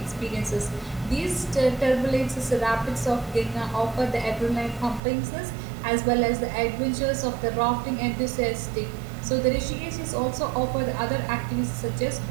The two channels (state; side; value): drops out; left; at 5.0 s